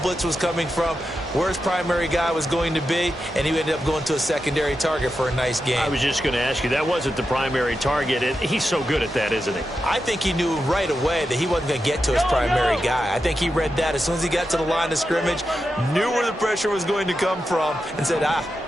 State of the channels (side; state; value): both; normal; correlation 0.89